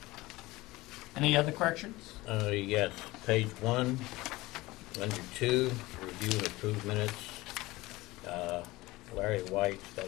Any other corrections? Yes, page 1, under 2, review and approve minutes. Larry White,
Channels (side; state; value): right; quieter; 20.0 dB